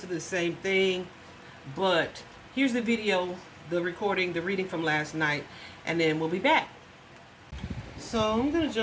the same thing, but here's the video, the recording, the reading from last night, and then we'll be back. So I'm going to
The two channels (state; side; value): identical; both; correlation 1.00